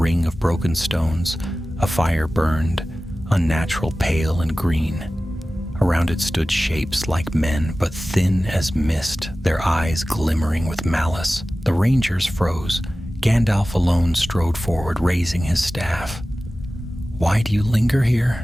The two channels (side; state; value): both; normal; correlation 0.96